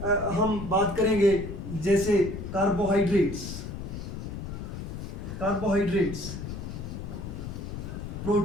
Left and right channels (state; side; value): noise; left; rumble, 7 dB below the sound